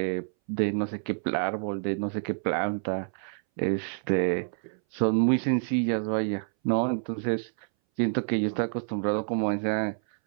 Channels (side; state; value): left; silent; 59 dB below the other